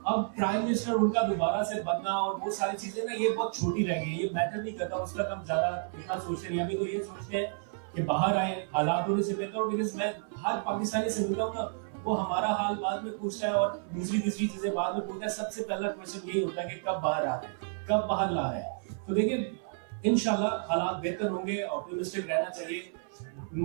अब प्राइम मिनिस्टर उनका दोबारा से बनना और वो सारी चीजें ना ये बहुत छोटी रह गई, ये मैटर नहीं करता, उस तक हम ज्यादा इतना सोचते नहीं। अभी तो ये सोचते हैं कि बाहर आए, हालात होने से बेहतर हो। बिकॉज मैं हर पाकिस्तानी से मिलता हूँ ना, वो हमारा हाल बाद में पूछता है और दूसरी तीसरी चीजें बाद में पूछता है। सबसे पहला क्वेश्चन यही होता है कि कब बाहर आ रहे हैं, कब बाहर ला रहे हैं। तो देखिए इंशाल्लाह हालात बेहतर होंगे, ऑप्टिमिस्टिक रहना चाहिए।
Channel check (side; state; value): left; silent; 57 dB below the other